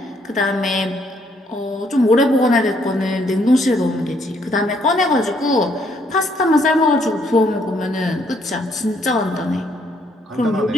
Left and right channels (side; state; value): both; normal; correlation 0.69